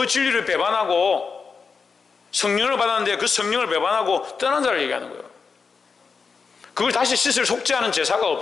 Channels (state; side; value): quieter; right; 5.2 dB